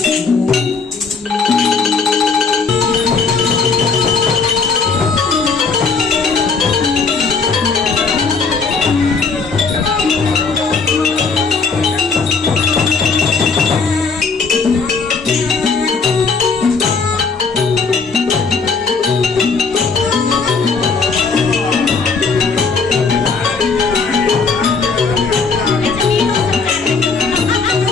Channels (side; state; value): right; quieter; 4.8 dB